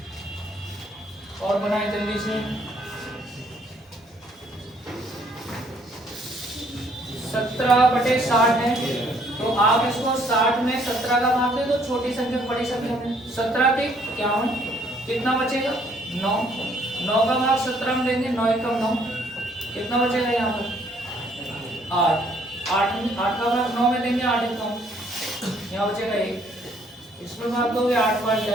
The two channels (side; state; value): both; normal; correlation 0.64